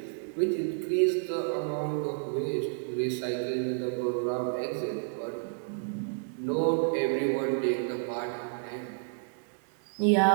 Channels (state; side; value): silent; left; 56 dB below the other